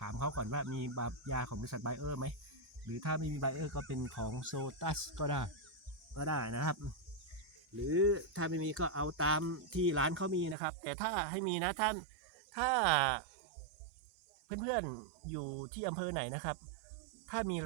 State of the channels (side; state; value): left; drops out; at 10.6 s